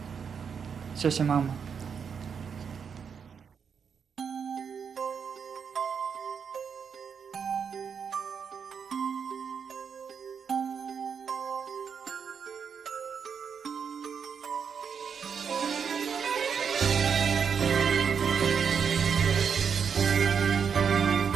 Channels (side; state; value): left; quieter; 6.7 dB